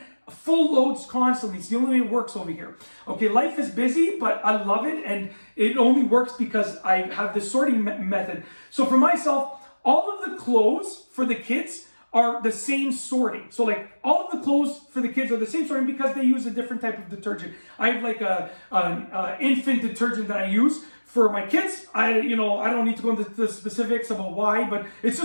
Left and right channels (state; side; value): inverted; both; correlation -1.00